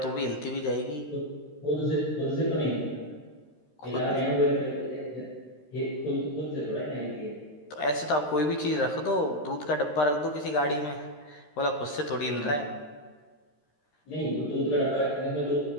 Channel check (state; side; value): late; right; 13 ms